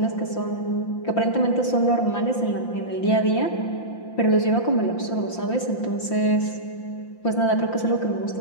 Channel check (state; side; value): late; right; 5.8 ms